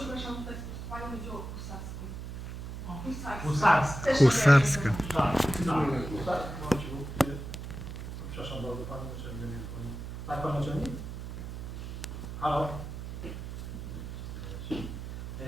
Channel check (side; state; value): right; noise; hum, 8 dB below the sound